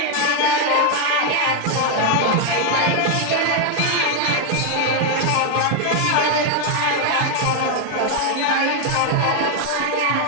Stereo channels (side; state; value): both; different; correlation 0.01